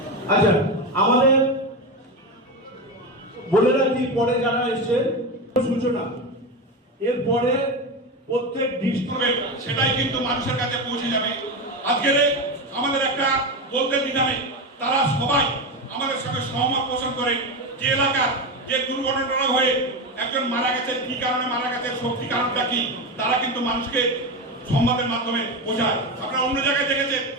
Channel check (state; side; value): normal; both; correlation 0.17